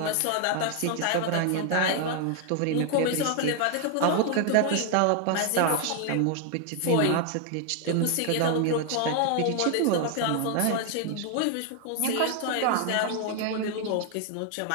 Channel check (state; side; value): different; both; correlation 0.00